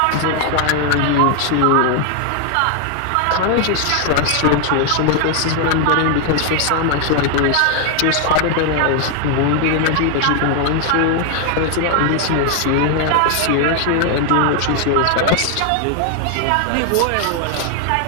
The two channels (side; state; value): both; different; correlation 0.00